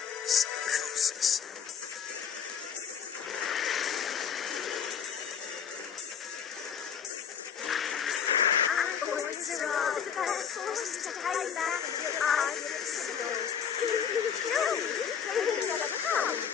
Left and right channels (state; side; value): quieter; right; 7.6 dB